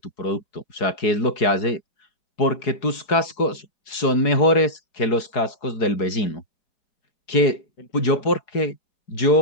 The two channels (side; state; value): right; late; 4.7 ms